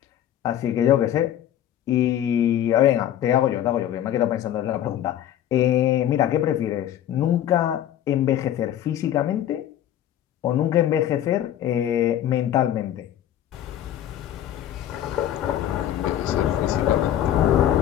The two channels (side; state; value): right; quieter; 11.3 dB